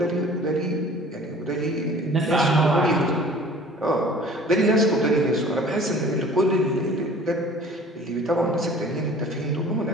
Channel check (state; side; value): normal; both; correlation 0.47